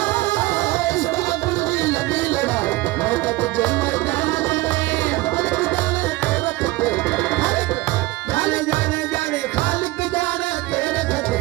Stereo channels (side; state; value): left; quieter; 20.1 dB